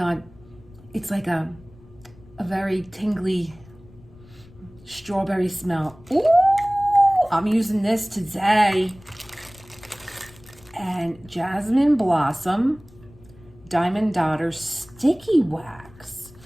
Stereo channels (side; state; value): left; noise; rumble, 24 dB below the sound